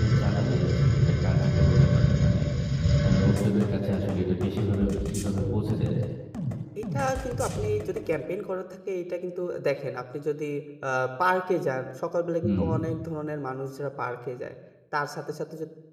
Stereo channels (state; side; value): identical; both; correlation 1.00